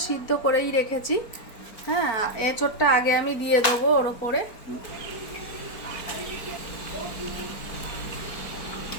সিদ্ধ করেই রেখেছি। হ্যাঁ, এঁচোড়টা আগে আমি দিয়ে দেবো ওর ওপরে।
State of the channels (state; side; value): late; right; 4.4 ms